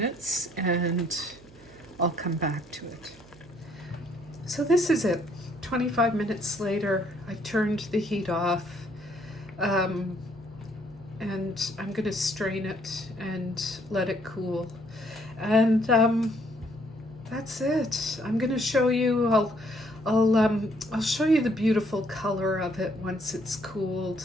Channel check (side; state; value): right; noise; hum, 23 dB below the sound